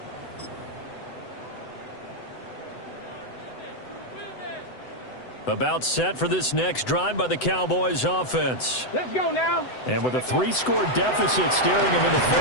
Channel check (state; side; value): late; right; 7.9 ms